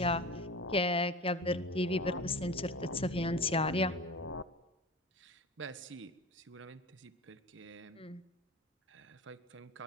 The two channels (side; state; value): both; normal; correlation 0.33